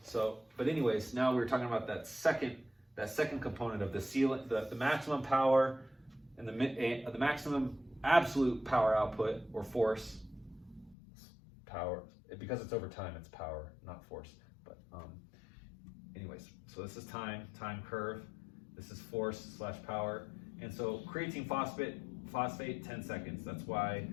anyways, now we're talking about that second component of the ceiling, the maximum power, and the maximum absolute power output or force. Power, because it's over time, it's power, not force. But anyways, so this is time curve. This is force / power, and so creatine phosphate 10 seconds. That's why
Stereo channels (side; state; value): right; drops out; at 11.0 s